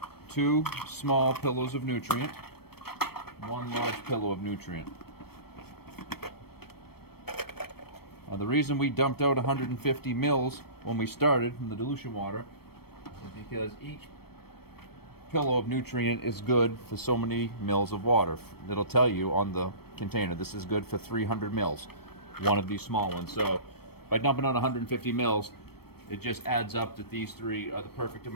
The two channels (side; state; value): right; late; 0.96 ms